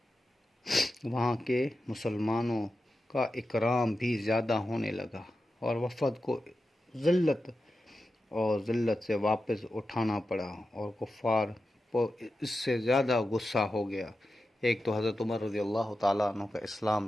وہاں کے مسلمانوں کا اکرام بھی زیادہ ہونے لگا، اور وفد کو ذلت سے واپس اٹھانا پڑا، اور کفار کو اس سے زیادہ غصہ ہو گیا۔ ایک تو حضرت عمر رضی اللہ تعالیٰ عنہ کا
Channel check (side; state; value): both; normal; correlation 0.91